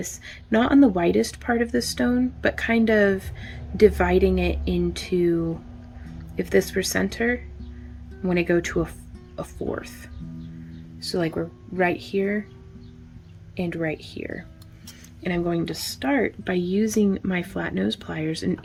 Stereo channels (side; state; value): both; identical; correlation 1.00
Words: not on the widest part of the stone, but kind of dividing it into, if this were center, I want to go to a fourth. So like we're right here and right here. And I'm going to start by using my flat nose pliers. And